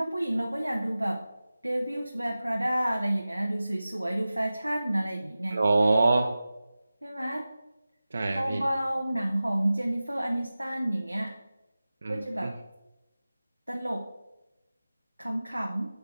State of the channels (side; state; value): both; inverted; correlation -0.96